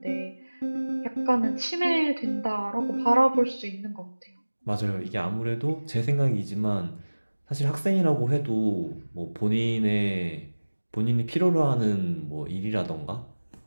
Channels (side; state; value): both; inverted; correlation -1.00